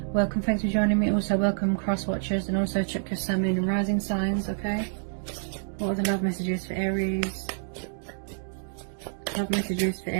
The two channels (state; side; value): silent; left; digital silence